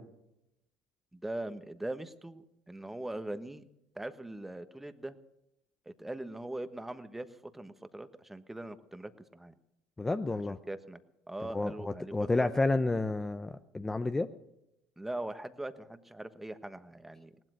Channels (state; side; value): normal; both; correlation 0.96